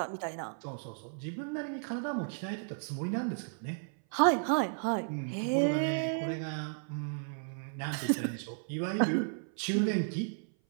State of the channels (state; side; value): silent; left; 55 dB below the other